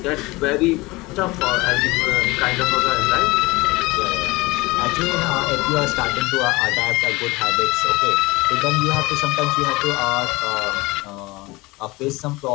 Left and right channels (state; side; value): quieter; right; 22.2 dB